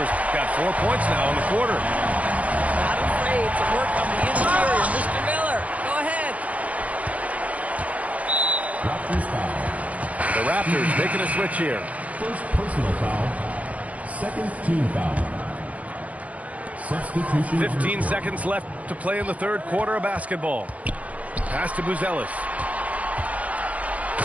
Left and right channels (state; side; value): late; left; 0.068 ms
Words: got 4 points now in the quarter. Not afraid to work on the interior. Mr. Miller, go ahead. Raptors foul. The Raptors making a switch here. First personal foul. Second team foul. Substitution. 15 seconds left to play in the third quarter of basketball. Pass to Buzelis.